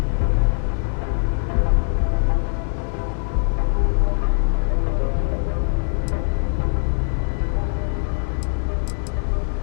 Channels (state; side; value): silent; right; digital silence